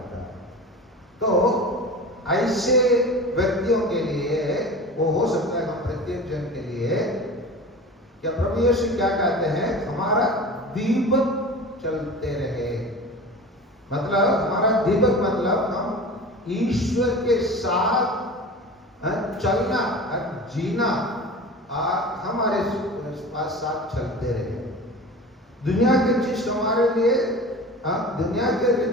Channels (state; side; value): normal; both; correlation 0.34